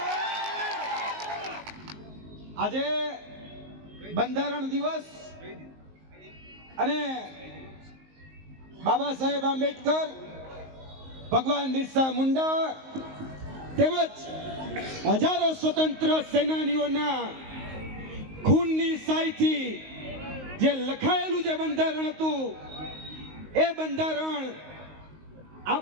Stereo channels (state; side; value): late; left; 19 ms